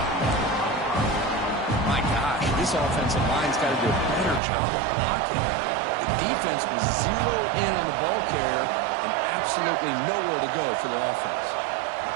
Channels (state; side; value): drops out; left; at 4.4 s